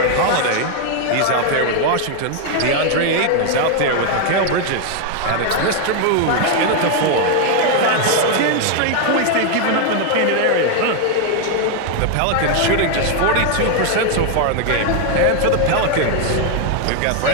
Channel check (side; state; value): both; different; correlation 0.00